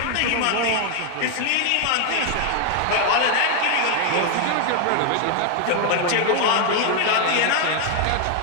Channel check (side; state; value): both; different; correlation 0.00